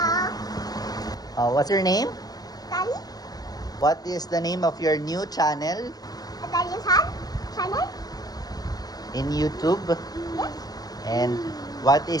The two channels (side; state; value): right; late; 0.19 ms